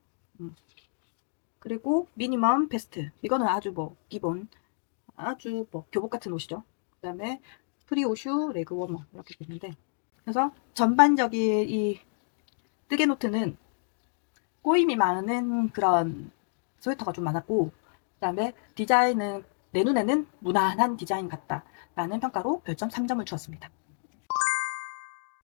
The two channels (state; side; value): silent; right; digital silence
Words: 그리고 미니멈 베스트, 이거는 아주 뭐 기본, 아주 뭐 교복 같은 옷이죠. 그다음에 프리오슈 레그 워머 이렇게 돼 있는데, 그래서 전반적인 이 뜨개 노트는 꼬임이 많은 그런 스웨터가 좀 많았고, 그다음에 디자인은 내 눈에는 무난한 디자인 같다 라는 평가로 별점 3점을 주었습니다.